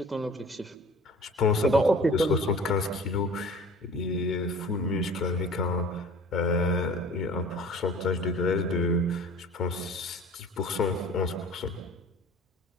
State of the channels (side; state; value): both; normal; correlation 0.45